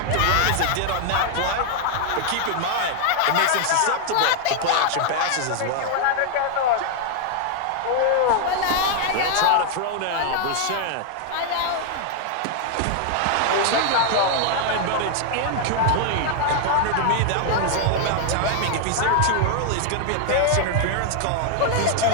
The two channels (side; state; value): both; different; correlation 0.00